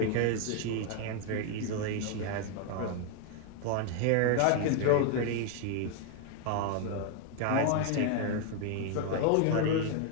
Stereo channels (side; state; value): both; different; correlation 0.00